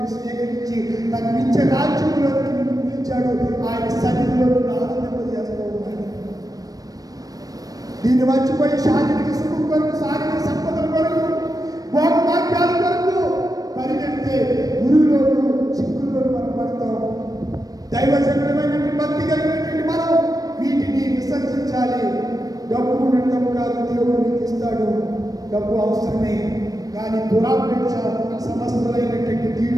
స్వీకరించి తన నిత్య రాజ్యంలోకి నిన్ను పిలిచాడు. ఆయన సన్నిధిలో నిన్ను ఆనందింపజేస్తూ ఉన్నాడు. దీన్ని మర్చిపోయి శారీరక సుఖం కొరకు, శారీరక సంపదల కొరకు, భోగవాక్యాల కొరకు పరిగెడితే గురువులోను చిక్కుల్లోను మనం పడతాం. దైవజనమైనటువంటి భక్తి కలిగినటువంటి మనం వీటిని విసర్జించాలి. డబ్బు ఉండడం కాదు, దేవుడు నీకు ఇస్తాడు. డబ్బు అవసరమే, కానీ దురాపేక్ష సమస్తమైనటువంటి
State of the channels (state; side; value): late; left; 0.18 ms